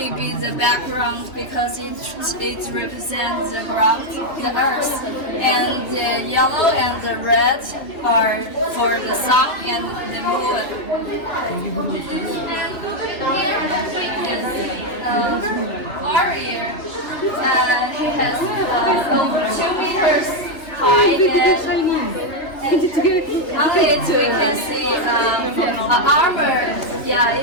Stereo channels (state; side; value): late; right; 2.8 ms